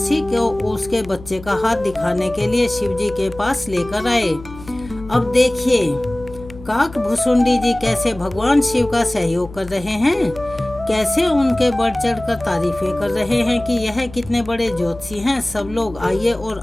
को उसके बच्चे का हाथ दिखाने के लिए शिवजी के पास लेकर आए। अब देखिए काकभुसुंडी जी कैसे भगवान शिव का सहयोग कर रहे हैं, कैसे उनके बढ़ चढ़ कर तारीफें कर रहे हैं कि यह कितने बड़े ज्योतिषी हैं। सब लोग आइए और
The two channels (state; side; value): noise; left; hum, 17 dB below the sound